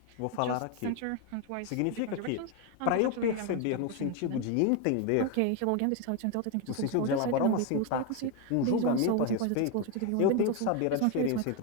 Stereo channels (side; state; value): both; different; correlation 0.02